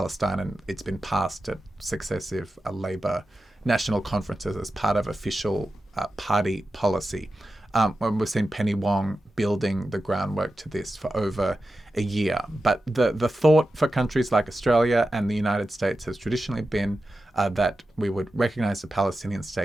and it's been passed at successive Labor national conferences as part of official party policy. We've seen Penny Wong building the groundwork to this for over a year. But the thought for countries like Australia and the United States has traditionally been that we would recognise the Palestinian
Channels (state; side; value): normal; both; correlation 0.92